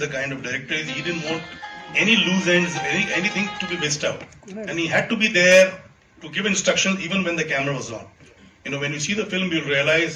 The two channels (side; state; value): both; identical; correlation 1.00